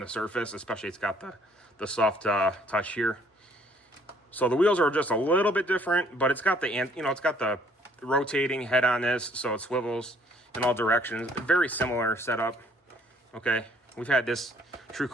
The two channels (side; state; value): both; normal; correlation 0.61